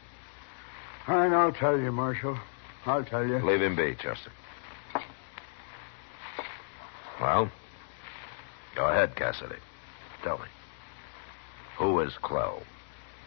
I'll tell you, Marshal. I'll tell you. Leave him be, Chester. Well, go ahead, Cassidy. Tell me. Who is Clell?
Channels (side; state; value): right; silent; digital silence